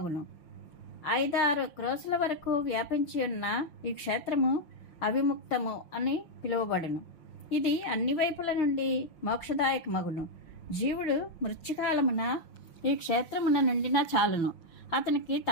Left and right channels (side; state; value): right; late; 6.0 ms